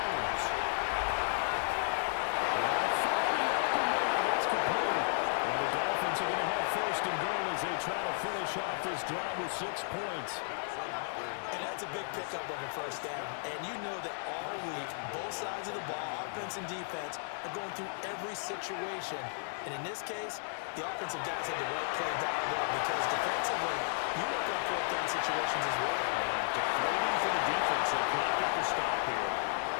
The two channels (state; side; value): silent; right; digital silence